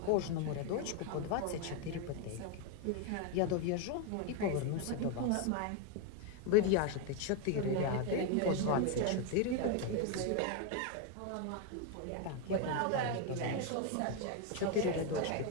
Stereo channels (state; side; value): different; both; correlation 0.01